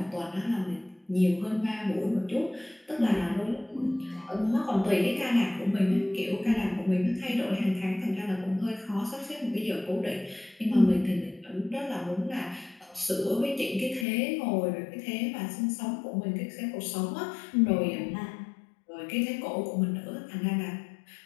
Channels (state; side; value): drops out; right; at 14.1 s